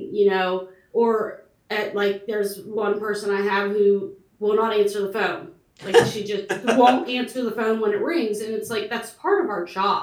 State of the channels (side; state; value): both; identical; correlation 1.00